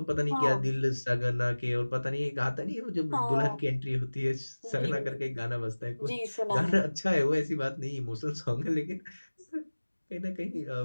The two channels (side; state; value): both; inverted; correlation -1.00